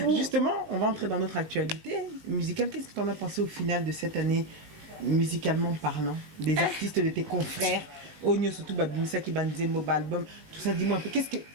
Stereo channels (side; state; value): left; late; 19 ms